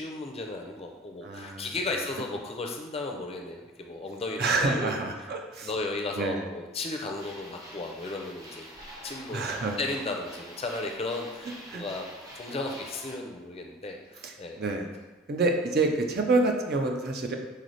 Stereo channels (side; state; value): both; normal; correlation 0.42